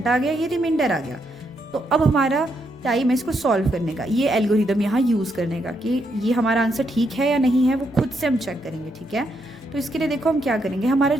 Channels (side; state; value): both; normal; correlation 0.78